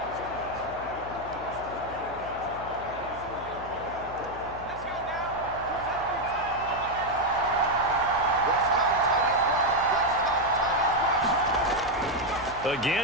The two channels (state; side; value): noise; left; hum, 15 dB below the sound